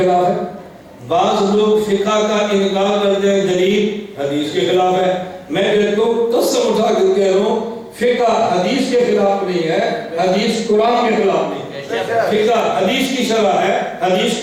ہے، بعض لوگ فقہ کا انکار کرتے ہیں، دلیل حدیث کے خلاف ہے۔ میں کہتا ہوں قسم اٹھا کر کہہ رہا ہوں فقہ حدیث کے خلاف نہیں ہے، حدیث قرآن کے خلاف نہیں ہے۔ فقہ حدیث کی شرح ہے، حدیث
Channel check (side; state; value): both; identical; correlation 1.00